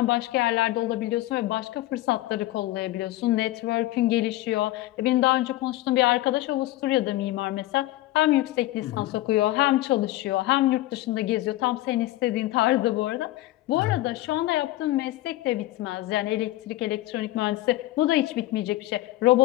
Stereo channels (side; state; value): right; quieter; 16.6 dB